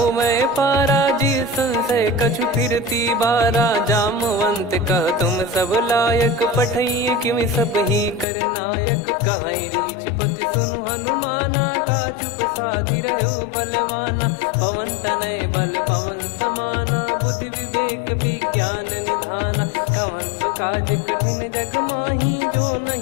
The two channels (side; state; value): right; drops out; at 8.2 s